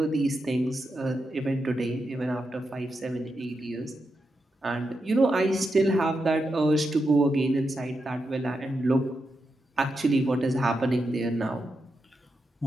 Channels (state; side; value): normal; both; correlation 0.86